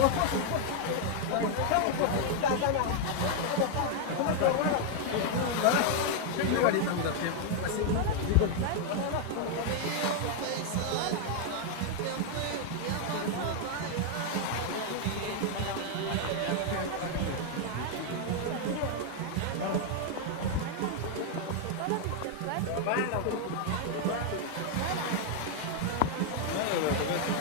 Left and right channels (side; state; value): both; different; correlation 0.00